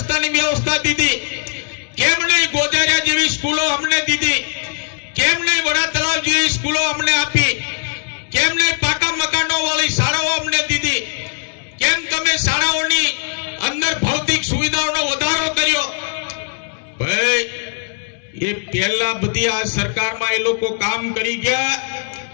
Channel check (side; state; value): right; silent; 67 dB below the other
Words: વ્યવસ્થા દીધી કેમ નહીં ગોધેરિયા જેવી સ્કૂલો અમને દીધી કેમ નહીં વડા તળાવ જેવી સ્કૂલો અમને આપી કેમ નહીં પાકા મકાનો વાળી શાળાઓ અમને દીધી કેમ તમે શાળાઓની અંદર ભૌતિક સુવિધાઓનો વધારો કર્યો ભાઈ એ પહેલા બધી આ સરકારમાં એ લોકો કામ કરી ગયા